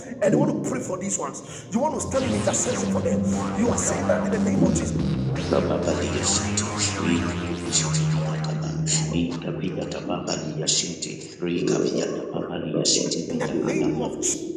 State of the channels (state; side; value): identical; both; correlation 1.00